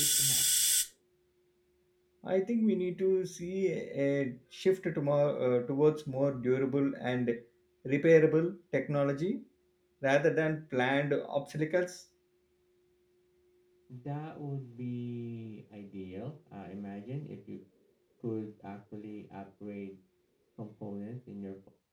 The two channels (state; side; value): identical; both; correlation 1.00